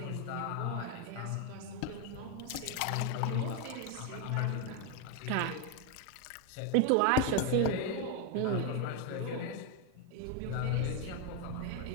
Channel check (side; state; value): both; different; correlation 0.01